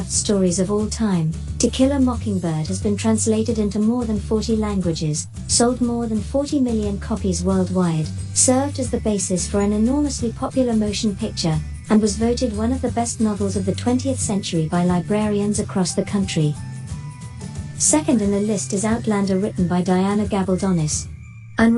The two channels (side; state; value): both; identical; correlation 1.00